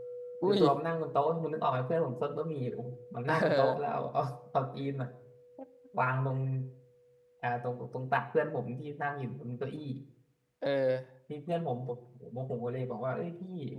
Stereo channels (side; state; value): both; identical; correlation 1.00